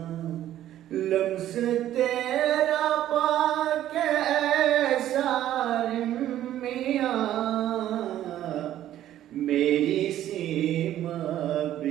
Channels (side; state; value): left; quieter; 12.4 dB